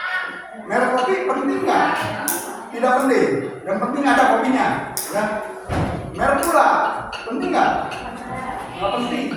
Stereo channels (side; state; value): both; identical; correlation 1.00